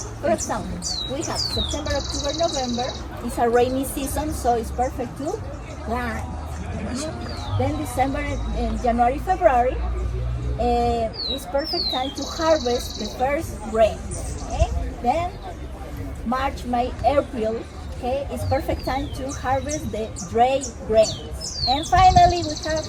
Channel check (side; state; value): both; identical; correlation 1.00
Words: For example, we have September, October, November. It's a rainy season, so it's perfect to plant. Then December and January, February. It's perfect time to harvest the first grains. Okay? Then March, May, April. Okay, it's perfect time to harvest the dry grains. And finally, we have